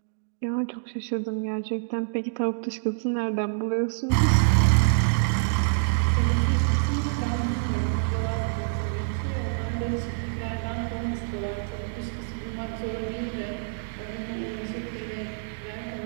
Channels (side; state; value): left; silent; digital silence